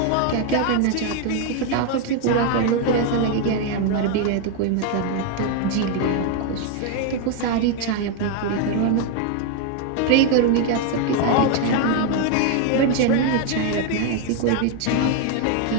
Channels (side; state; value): both; different; correlation 0.01